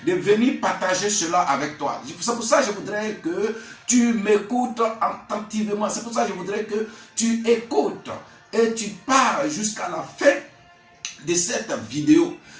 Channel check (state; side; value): identical; both; correlation 1.00